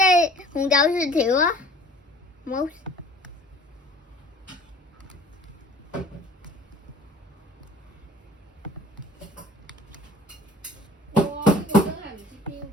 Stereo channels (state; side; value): normal; both; correlation 0.47